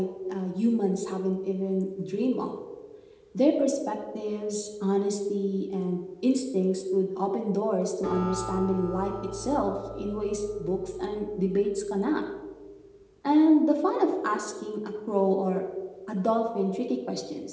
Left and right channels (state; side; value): identical; both; correlation 1.00